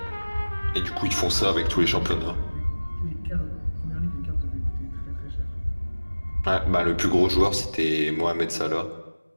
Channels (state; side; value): inverted; both; correlation -1.00